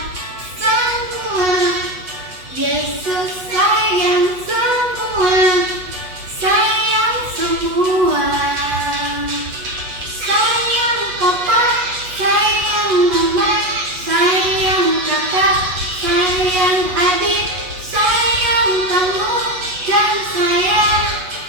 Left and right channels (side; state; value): left; late; 8.2 ms